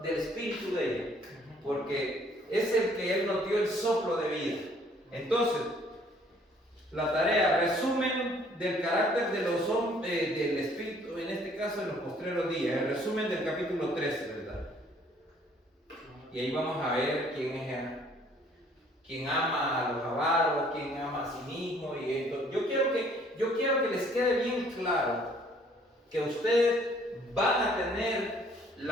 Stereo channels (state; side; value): normal; both; correlation 0.60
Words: del espíritu de ella, porque es el que Él nos dio el soplo de vida. Entonces, la tarea, resumen del carácter de los hombres, del espíritu, en este caso en los postreros días, el resumen del capítulo 13, ¿verdad? Y ahí vamos a ver quién ama a los avaros, quién ama a sí mismo. Y esto. Yo quiero que les quede bien claro que ustedes van a tener